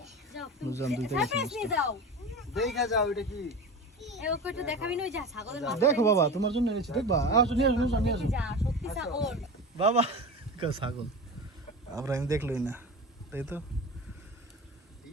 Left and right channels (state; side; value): normal; both; correlation 0.29